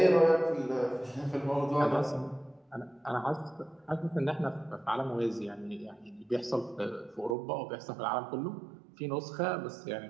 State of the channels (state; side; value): drops out; left; at 7.4 s